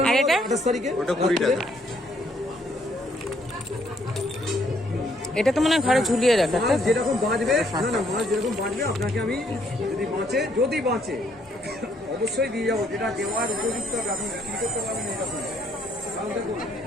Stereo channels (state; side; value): normal; both; correlation 0.68